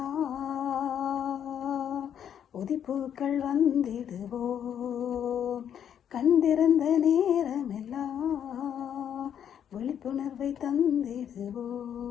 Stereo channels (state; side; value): quieter; right; 9.1 dB